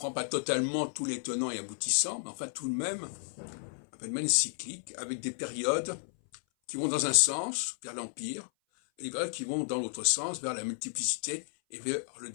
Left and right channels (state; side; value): silent; right; 56 dB below the other